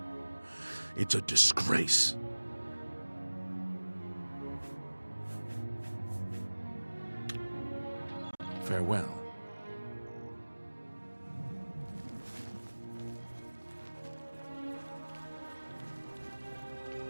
It's a disgrace. Farewell.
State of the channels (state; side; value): inverted; both; correlation -1.00